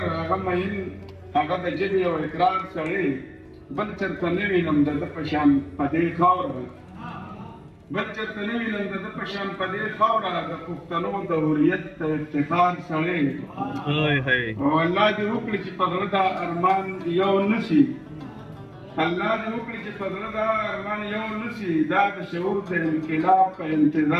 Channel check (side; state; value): both; identical; correlation 1.00